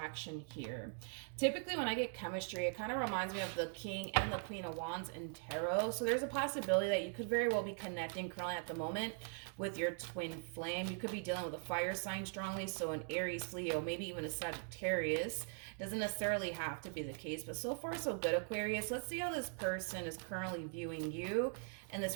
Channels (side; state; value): left; silent; 50 dB below the other